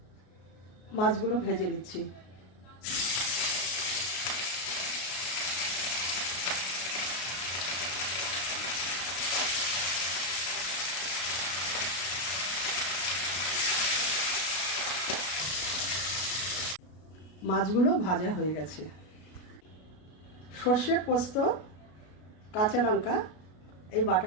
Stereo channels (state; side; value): late; right; 33 ms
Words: মাছগুলো ভেজে নিচ্ছি। মাছগুলো ভাজা হয়ে গেছে। সর্ষে, পোস্ত, কাঁচা লঙ্কা এই